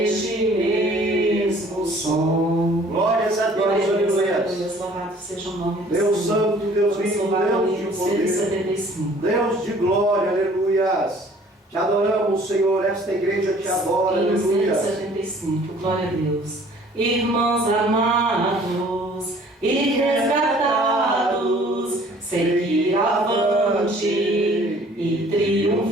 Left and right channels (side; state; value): both; normal; correlation 0.54